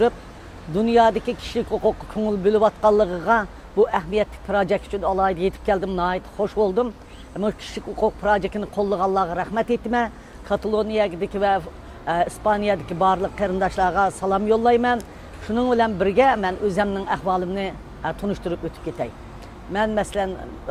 dunyodagi kishilik huquqqa ko'ngil bo'layotganligiga bu ahamiyatli projekt uchun alohida yetib keldim, nihoyat xush bo'ldim. Bu kishilik huquq projektini qo'llaganlarga rahmat aytaman. Kataloniyadagi va İspaniyadagi barliq qarindoshlarga salom yo'llayman. Shuning bilan birga men o'zimning ahvolimni tunishtirib o'tib ketay. Men masalan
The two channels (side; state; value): both; identical; correlation 1.00